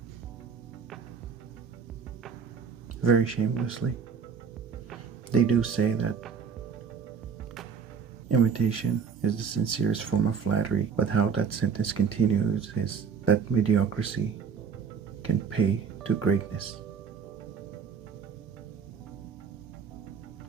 very shamelessly. They do say that imitation is the sincerest form of flattery, but how that sentence continues is that mediocrity can pay to greatness.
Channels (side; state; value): left; quieter; 6.2 dB